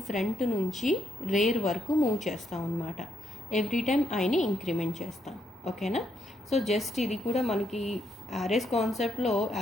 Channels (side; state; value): both; normal; correlation 0.77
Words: ఫ్రంట్ నుంచి రేర్ వరకు మూవ్ చేస్తాం అనమాట. ఎవ్రీ టైం ఐని ఇంక్రిమెంట్ చేస్తాం. ఓకేనా? సో జస్ట్ ఇది కూడా మనకి యారేస్ కాన్సెప్ట్లో